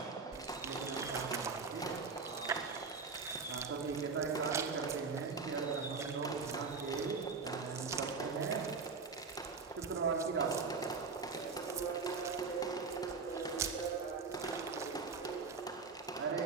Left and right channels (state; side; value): quieter; left; 4.7 dB